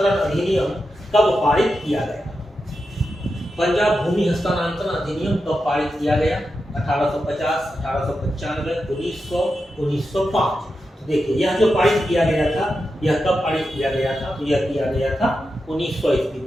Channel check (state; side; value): normal; both; correlation 0.89